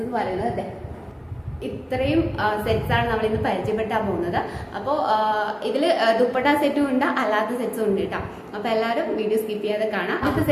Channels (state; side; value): identical; both; correlation 1.00